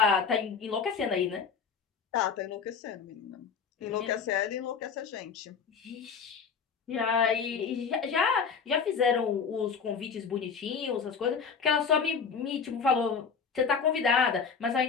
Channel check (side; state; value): right; quieter; 6.0 dB